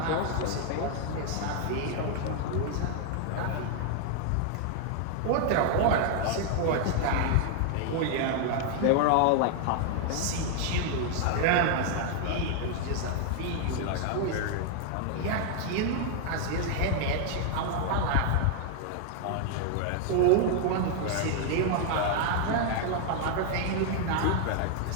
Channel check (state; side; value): different; both; correlation 0.00